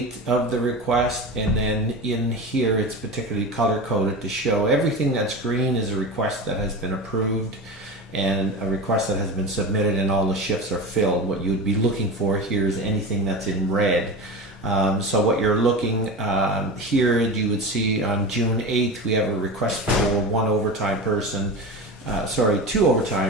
of the request, and then in here it's particularly color coded to show everything that's green is a request that has been approved and a request that has been submitted and all the shifts are filled. What you would be looking for here is anything that's in red. So what you're looking here, you would see on June 8th we have a request for one overtime person. Two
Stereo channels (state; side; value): normal; both; correlation 0.28